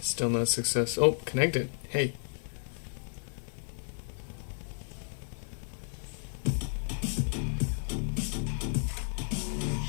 no success. Oh, connected. Hey.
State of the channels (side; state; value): right; silent; digital silence